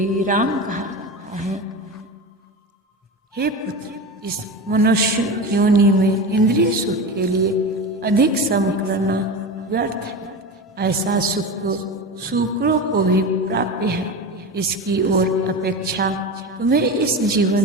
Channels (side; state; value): both; normal; correlation 0.25